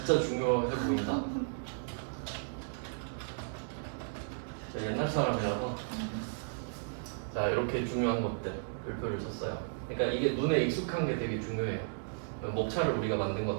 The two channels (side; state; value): left; silent; 55 dB below the other